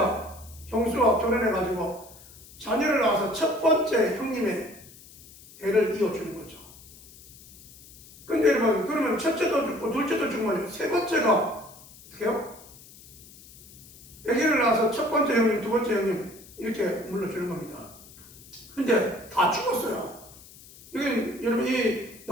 형수와 결혼해가지고 자녀를 낳아서 첫 번째 형님의 대를 이어주는 거죠. 근데 여러분 그러면 첫째도 죽고 둘째도 죽으면 세 번째가 어떻게 해요? 아기를 낳아서 첫 번째 형님, 두 번째 형님 이렇게 물러주는 겁니다. 근데 다 죽었어요. 여기 여러분 이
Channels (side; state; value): left; noise; hiss, 21 dB below the sound